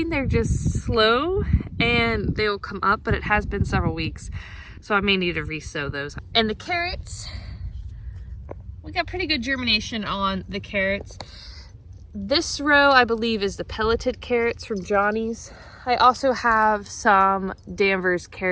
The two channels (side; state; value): both; identical; correlation 1.00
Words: they're just slow and they will come up, but it has been several weeks, so I may need to re-sow those. And the carrots, we got pretty good germination on the carrots. This row, I believe, is the pelleted carrots from Johnny's. I also have some Danvers